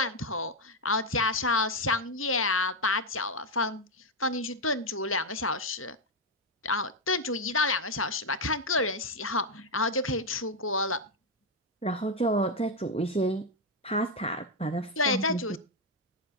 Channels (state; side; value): normal; both; correlation 0.03